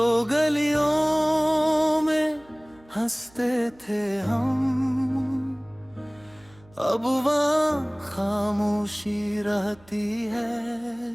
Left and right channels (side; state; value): right; noise; hum, 28 dB below the sound